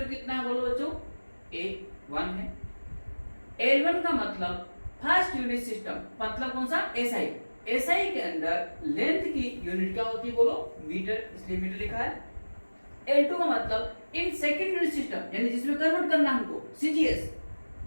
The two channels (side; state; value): both; inverted; correlation -1.00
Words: कितना है बोलो बच्चों, a 1 है। l1 का मतलब फर्स्ट यूनिट सिस्टम, मतलब कौन सा, एसआई। एसआई के अंदर लेंथ की यूनिट क्या होती है बोलो, मीटर, इसलिए मीटर लिखा है। l2 का मतलब इन सेकंड यूनिट सिस्टम, यानी जिसमें कन्वर्ट करना हमको, सीजीएस,